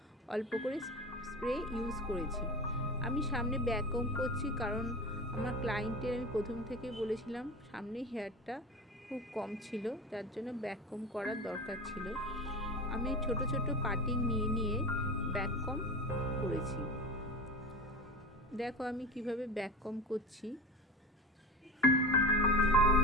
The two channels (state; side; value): normal; both; correlation 0.29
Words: অল্প করে স্প্রে ইউজ করেছি। আমি সামনে ব্যাককম করছি কারণ আমার ক্লায়েন্টের আমি প্রথম থেকে বলেছিলাম সামনে হেয়ারটা খুব কম ছিল, যার জন্য ব্যাককম করার দরকার ছিল। আমি ছোট ছোট কাটিং নিয়ে ব্যাককম করেছি। দেখো আমি কিভাবে ব্যাককম করছি।